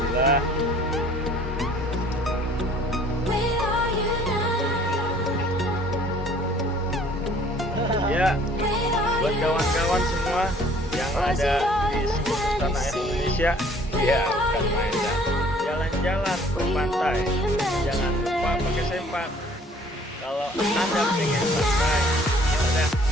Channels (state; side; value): normal; both; correlation 0.55